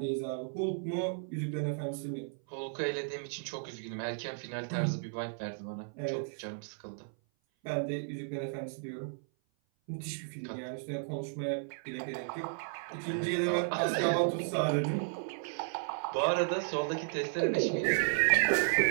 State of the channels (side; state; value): left; silent; 55 dB below the other